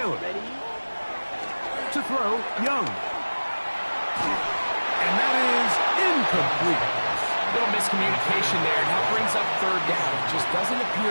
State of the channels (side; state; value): both; inverted; correlation -1.00